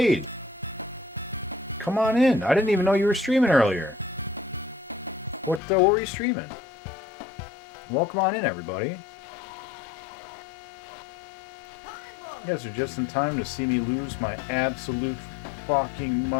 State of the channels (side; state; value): right; drops out; at 5.6 s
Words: Come on in. I didn't even know you were streaming earlier. What were you streaming? Welcome on in, everybody. You guys are just in time to see me lose my absolute fucking